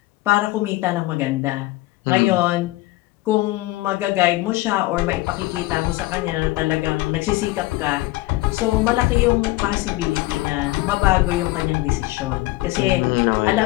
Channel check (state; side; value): quieter; right; 19.0 dB